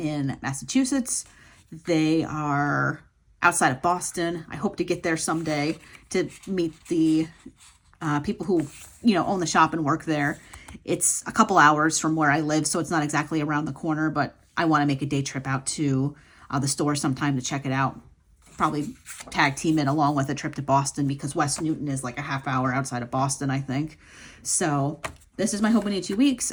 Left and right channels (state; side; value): identical; both; correlation 1.00